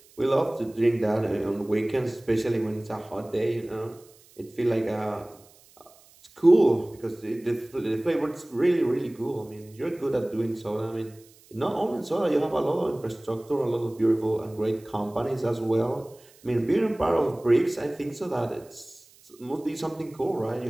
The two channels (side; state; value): right; noise; hiss, 27 dB below the sound